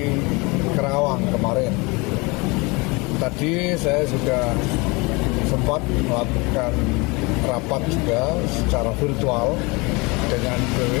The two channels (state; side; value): quieter; right; 26.5 dB